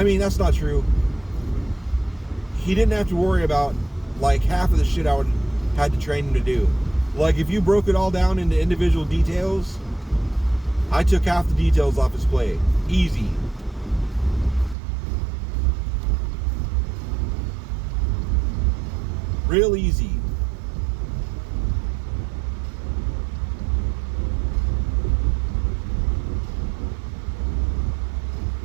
mean, that's not true. He didn't have to worry about like half of the shit I had to train him to do. Like if you broke it all down into individual details, I took half the details off his plate. Easy. Real easy.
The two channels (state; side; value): drops out; left; at 14.8 s